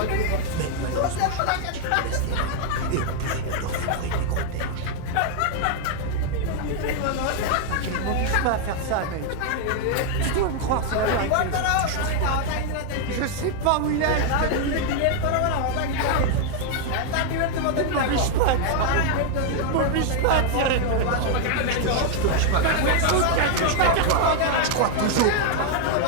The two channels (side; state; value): both; different; correlation 0.00